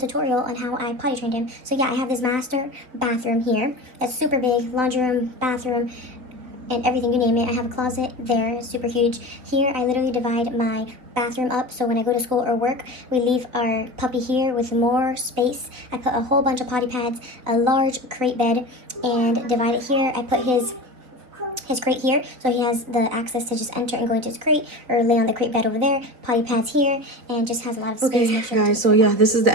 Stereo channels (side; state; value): left; late; 4.0 ms